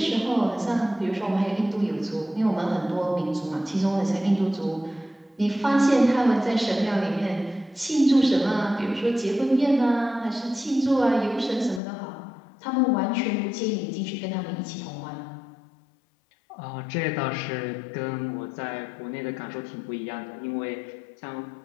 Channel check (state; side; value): drops out; right; at 11.8 s